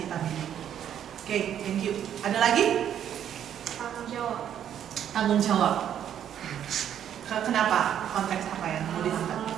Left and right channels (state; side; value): quieter; left; 9.8 dB